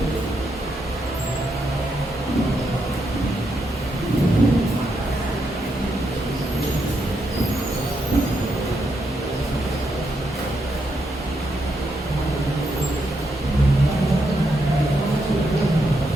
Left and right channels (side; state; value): both; normal; correlation 0.81